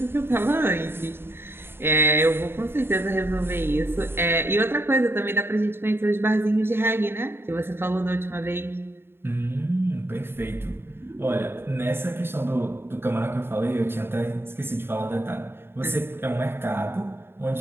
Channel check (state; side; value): late; left; 0.11 ms